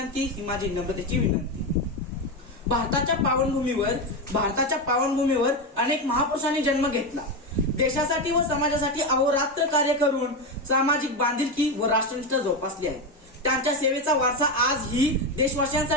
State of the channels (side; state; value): both; normal; correlation 0.13